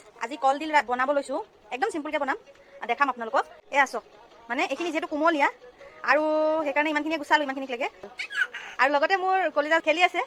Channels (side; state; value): both; identical; correlation 1.00